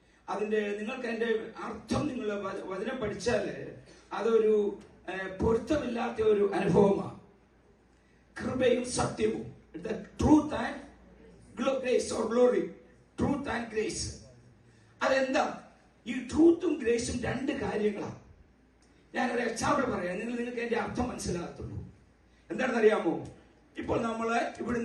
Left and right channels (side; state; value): both; identical; correlation 1.00